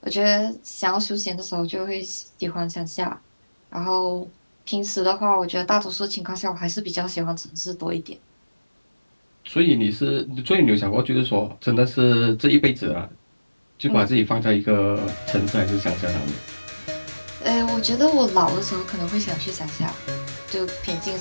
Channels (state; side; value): inverted; both; correlation -1.00